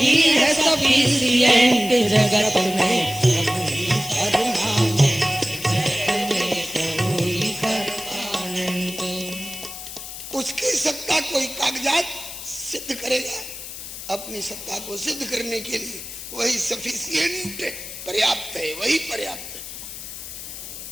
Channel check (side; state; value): left; noise; hiss, 10 dB below the sound